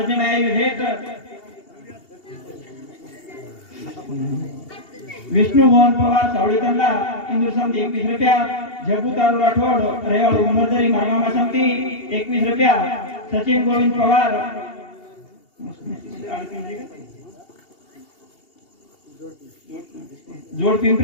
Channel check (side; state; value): right; late; 2.8 ms